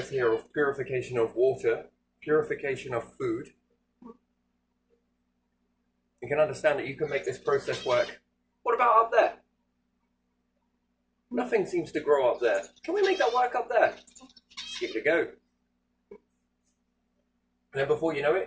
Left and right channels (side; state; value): both; identical; correlation 1.00